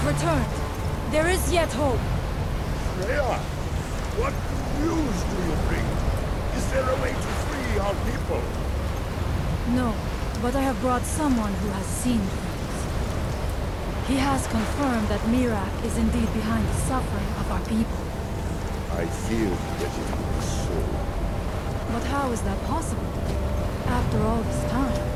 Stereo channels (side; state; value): both; identical; correlation 1.00